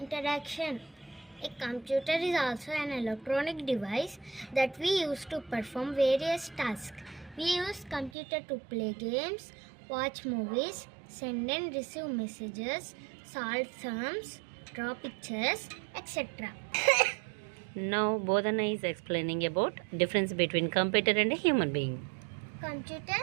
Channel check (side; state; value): left; drops out; at 8.1 s